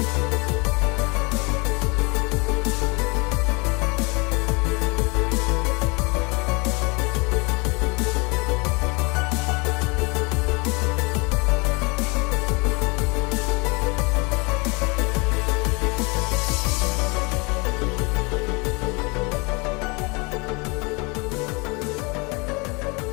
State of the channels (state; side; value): quieter; right; 28.8 dB